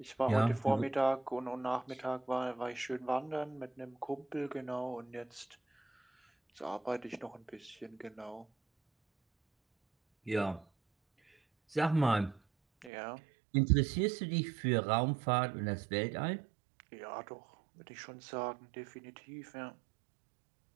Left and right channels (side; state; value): left; drops out; at 12.9 s